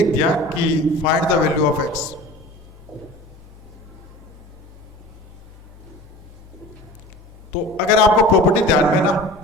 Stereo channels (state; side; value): normal; both; correlation 0.39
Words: दिया कि find the value of x। तो अगर आपको प्रॉपर्टी ध्यान में ना,